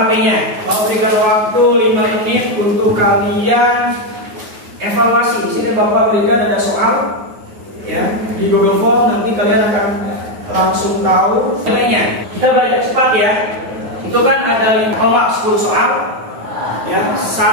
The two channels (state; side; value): late; left; 9.5 ms